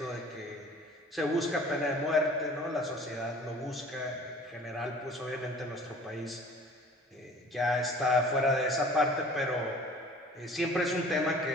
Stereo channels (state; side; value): normal; both; correlation 0.48